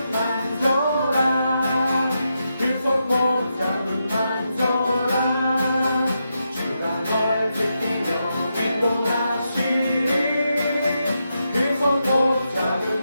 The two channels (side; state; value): both; inverted; correlation -0.85